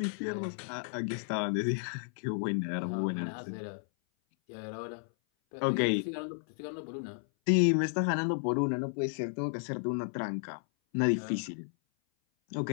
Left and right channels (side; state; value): right; silent; 56 dB below the other